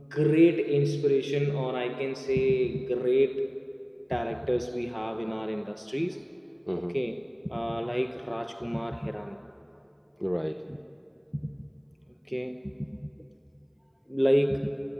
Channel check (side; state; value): both; identical; correlation 1.00